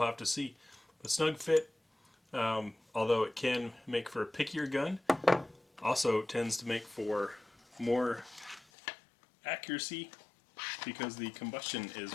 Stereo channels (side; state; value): right; drops out; at 8.7 s